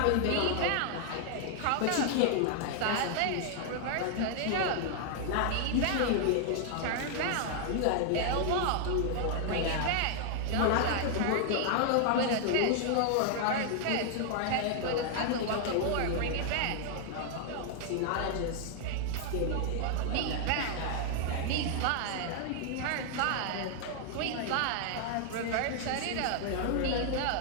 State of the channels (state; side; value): different; both; correlation 0.00